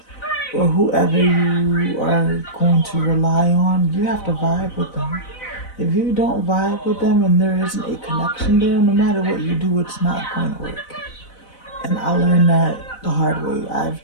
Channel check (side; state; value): right; late; 4.0 ms